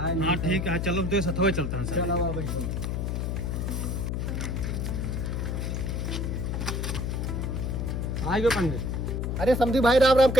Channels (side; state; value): left; noise; hum, 1 dB below the sound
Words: हाँ ठीक है चलो तो सथवे चलते हैं सर। चलो बैठो। आ गए पंडित। अरे समझी भाई राम राम,